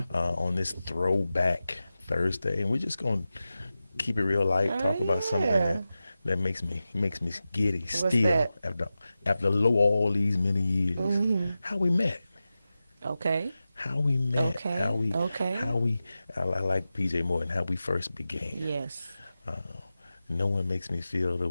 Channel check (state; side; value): inverted; both; correlation -0.94